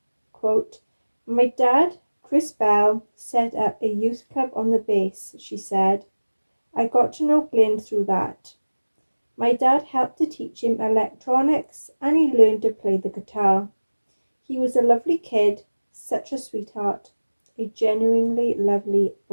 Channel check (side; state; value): both; inverted; correlation -1.00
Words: Quote, my dad, Chris Bell, set up a youth club on the base, she said. I got to know Glyn through that. My dad helped to teach him electronics and he learned to play the guitar. He was a lovely kid, such a sweetheart, a genuinely lovely